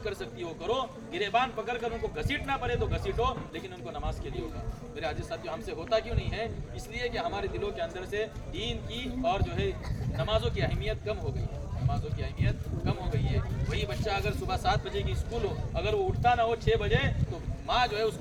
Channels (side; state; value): both; identical; correlation 1.00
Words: کر سکتی ہو کرو, گریبان پکڑ کر ان کو گھسیٹنا پڑے تو گھسیٹو, لیکن ان کو نماز کے لیے ہوگا. میرے عزیز ساتھیوں ہم سے ہوتا کیوں نہیں ہے, اس لیے کہ ہمارے دلوں کے اندر سے دین کی اور جو ہے نمازوں کی اہمیت کم ہو گئی ہے, نمازوں کی اہمیت کم ہو گئی ہے. وہی بچہ اگر صبح 7 بجے کی اسکول ہو, اگر وہ اٹھتا نہ ہو 6 بجے تو ماں جو ہے اس